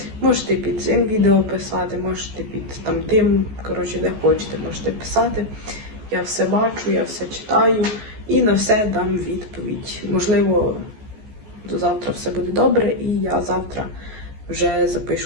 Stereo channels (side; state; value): left; late; 14 ms